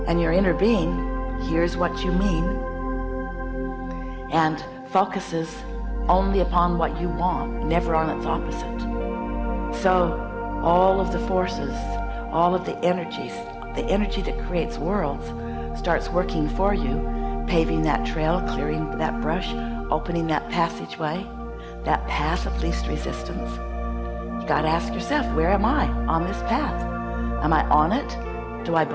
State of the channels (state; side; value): identical; both; correlation 1.00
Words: and your inner being hears what you mean and focuses only upon what you want, never on its opposite. So all of the forces, all of the energies, the energy that creates worlds starts working for you, paving that trail, clearing that brush, opening that passageway, that path of least resistance. You got to ask yourself, where am I on this path? Am I on it? Do I